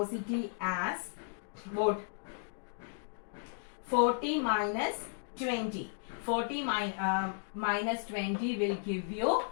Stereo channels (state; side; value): silent; right; digital silence